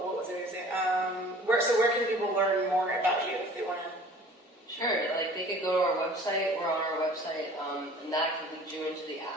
What was I going to say? Where can people learn more about you if they want to? Sure. They could go to our website. We're on our website, and that can lead you into the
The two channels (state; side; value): normal; both; correlation 0.48